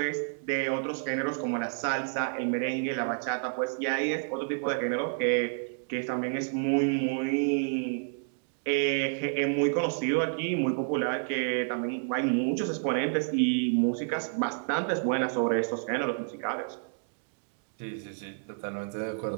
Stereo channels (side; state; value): left; silent; digital silence